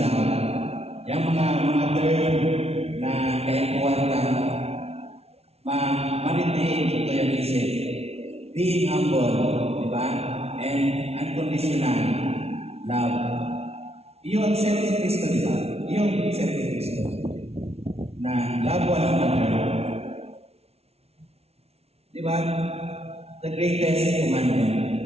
love. Yung mga term na kayakuan lang, being humble, di ba? And unconditional love. Yung accept ni Kristo, di ba? Yung accept ni Kristo. Na love one another. Di ba? The greatest commandment.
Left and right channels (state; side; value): late; left; 0.30 ms